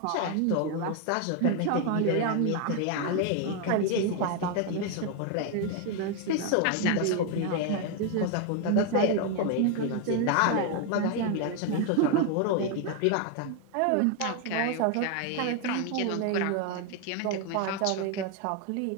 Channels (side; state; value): both; different; correlation 0.01